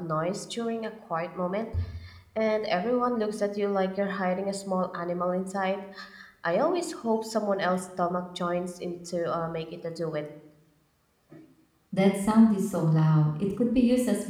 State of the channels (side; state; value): both; identical; correlation 1.00